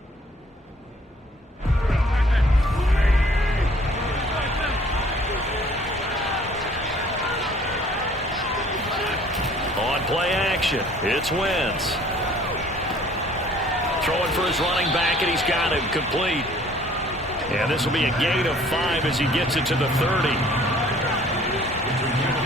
It's Wentz. Throwing for his running back, and he's got him complete. And this will be a gain of 5 as he gets it to the 30.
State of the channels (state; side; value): normal; both; correlation 0.56